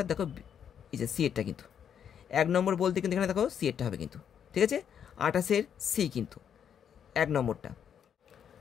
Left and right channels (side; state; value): right; quieter; 8.4 dB